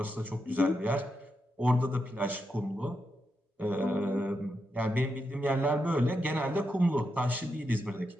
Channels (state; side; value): normal; both; correlation 0.85